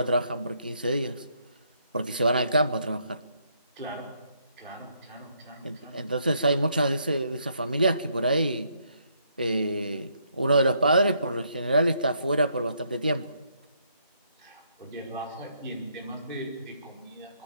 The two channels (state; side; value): inverted; both; correlation -0.73